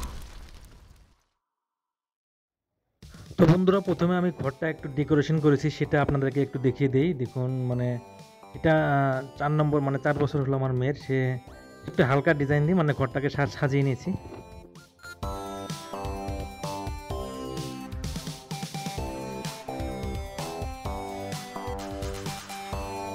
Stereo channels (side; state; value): both; identical; correlation 1.00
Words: তো বন্ধুরা প্রথমে আমি ঘরটা একটু ডেকোরেশন করেছি, সেটা আপনাদেরকে একটু দেখিয়ে দেই। দেখুন মানে এটা 4 নম্বর, মানে 4 বছর হলো আমার মেয়ের। সে একটু হালকা ডিজাইন দিয়ে মানে ঘরটাকে সাজিয়ে নিয়েছি।